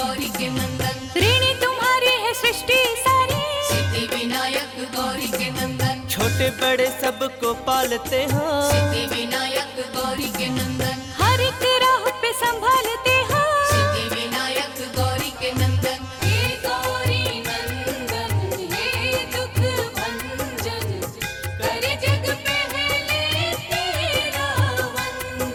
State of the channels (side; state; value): both; identical; correlation 1.00